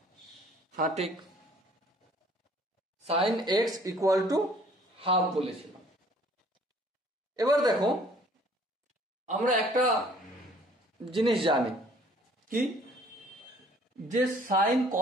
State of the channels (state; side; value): normal; both; correlation 0.56